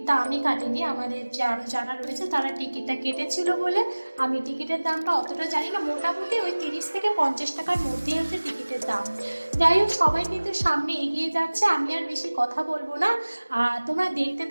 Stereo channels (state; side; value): inverted; both; correlation -1.00